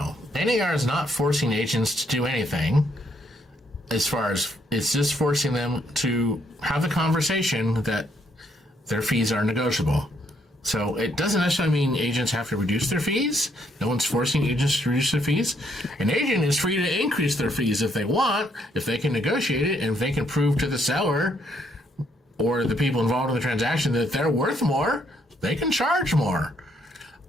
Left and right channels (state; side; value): normal; both; correlation 0.72